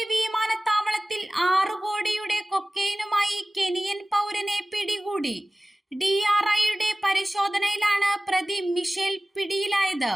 വിമാനത്താവളത്തിൽ 6 കോടിയുടെ കൊക്കൈനുമായി കെനിയൻ പൗരനെ പിടികൂടി. DRIയുടെ പരിശോധനയിലാണ് പ്രതി മിഷേൽ പിടിയിലായത്.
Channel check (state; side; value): normal; both; correlation 0.97